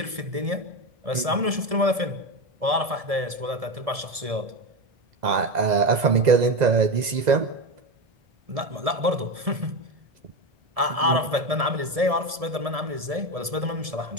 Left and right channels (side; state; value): left; late; 1.7 ms